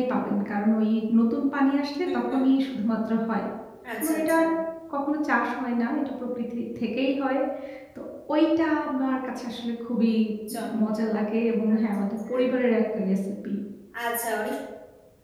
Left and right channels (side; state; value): both; identical; correlation 1.00